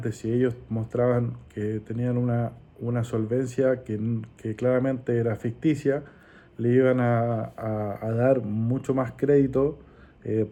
si ellos mostraban que tenían una solvencia que claramente era ficticia, le iban a dar mucho más crédito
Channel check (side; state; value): both; identical; correlation 1.00